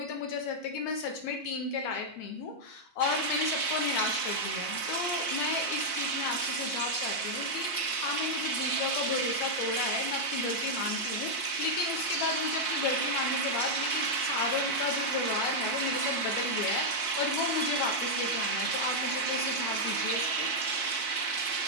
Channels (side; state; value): right; late; 4.4 ms